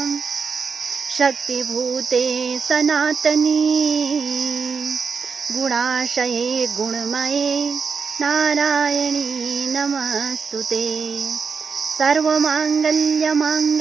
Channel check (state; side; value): quieter; left; 5.6 dB